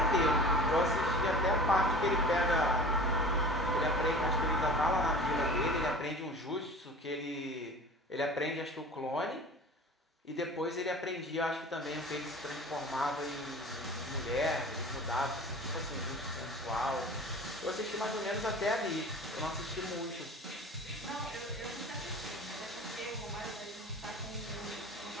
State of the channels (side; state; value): both; normal; correlation 0.39